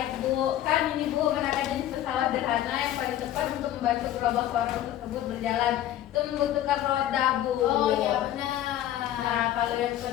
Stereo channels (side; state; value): right; quieter; 12.6 dB